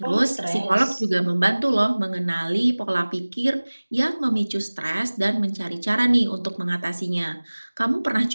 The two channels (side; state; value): both; inverted; correlation -1.00